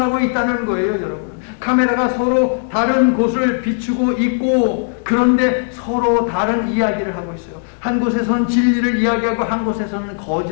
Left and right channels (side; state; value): right; silent; 61 dB below the other